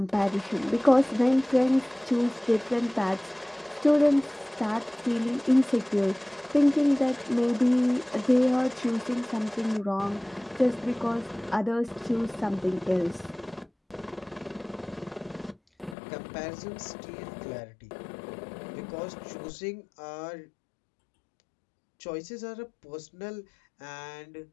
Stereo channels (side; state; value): right; drops out; at 16.0 s